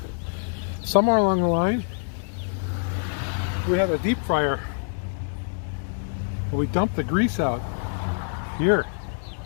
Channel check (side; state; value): right; silent; digital silence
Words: Somewhere along the line, we had a deep fryer. We dumped the grease out here.